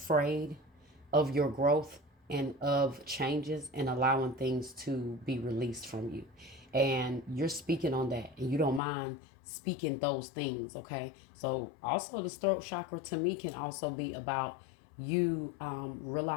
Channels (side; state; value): right; drops out; at 8.8 s